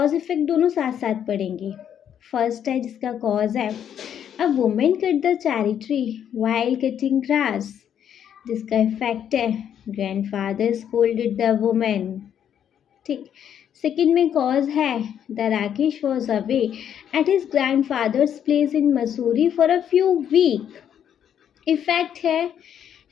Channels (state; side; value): quieter; right; 9.2 dB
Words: इफेक्ट दोनों साथ साथ पढ़ेंगे। फर्स्ट है जिसका कॉज है, a women cut the cherry tree while cutting grass. जिसका इफेक्ट है, ग्रैंडफादर स्कोल्डेड द वुमेन। ठीक। सेकंड में कॉज है, the Rakesh was away at his grandfather's place in Mussoorie for a few week. Effect है,